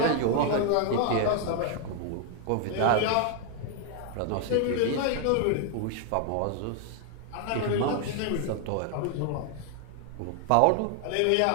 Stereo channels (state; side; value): different; both; correlation 0.00